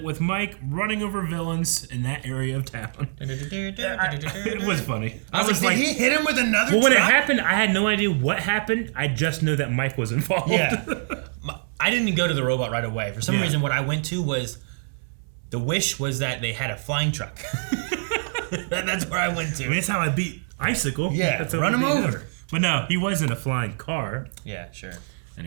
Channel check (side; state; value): left; silent; 62 dB below the other